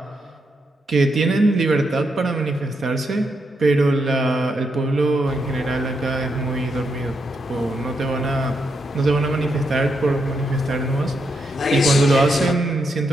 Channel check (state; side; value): normal; both; correlation 0.81